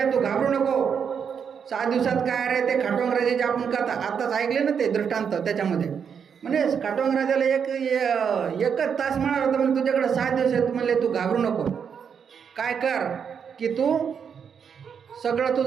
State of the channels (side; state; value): left; quieter; 7.1 dB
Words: तू घाबरू नको, 7 दिवसात काय रे ते खाटवांग राजाचे आपण कथा आताच ऐकले ना ते दृष्टांत, त्याच्यामध्ये म्हणजे खाटवांग राजाला एकच तास म्हणाला होता म्हणजे तुझ्याकडे 7 दिवस आहेत, म्हणले तू घाबरू नको, काय कर की तू सगळं